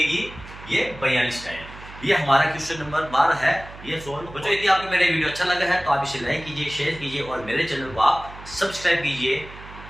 ये 42 टाइल। ये हमारा क्वेश्चन नंबर 12 है, ये सोल्व। बच्चों यदि आपको मेरा वीडियो अच्छा लगा है तो आप इसे लाइक कीजिए, शेयर कीजिए और मेरे चैनल को आप सब्सक्राइब कीजिए।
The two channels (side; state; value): right; noise; hum, 16 dB below the sound